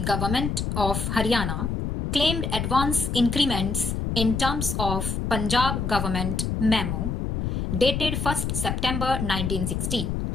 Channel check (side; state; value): left; noise; rumble, 1 dB below the sound